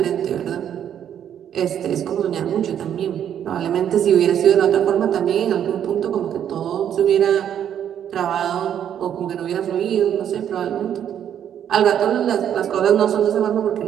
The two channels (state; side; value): quieter; left; 9.6 dB